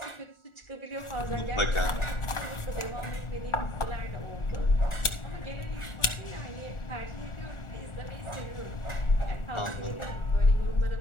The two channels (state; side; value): late; right; 1.4 ms